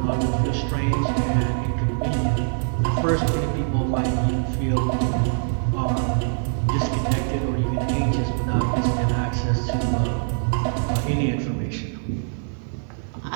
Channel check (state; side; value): silent; left; digital silence